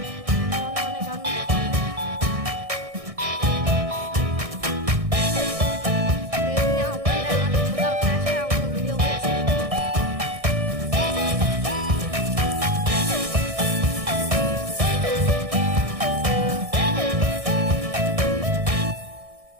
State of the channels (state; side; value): late; left; 1.6 ms